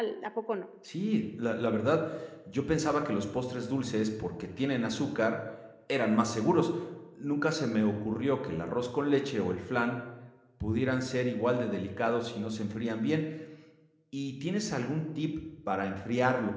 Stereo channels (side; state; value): both; identical; correlation 1.00